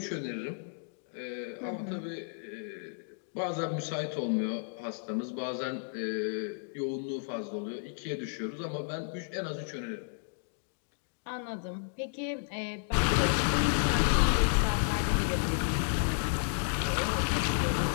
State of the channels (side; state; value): right; silent; digital silence